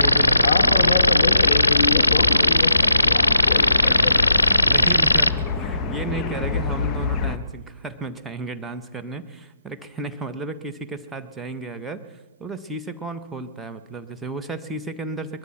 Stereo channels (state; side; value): inverted; both; correlation -0.80